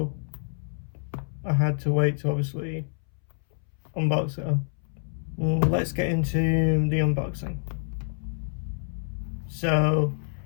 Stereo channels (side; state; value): right; silent; 60 dB below the other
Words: I had to wait to obviously unbox it. Let's get into the unboxing. So